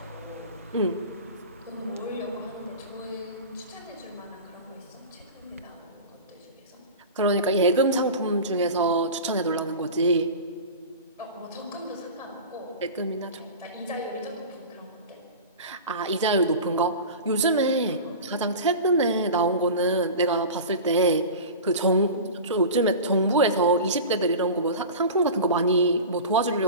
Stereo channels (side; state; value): both; inverted; correlation -0.32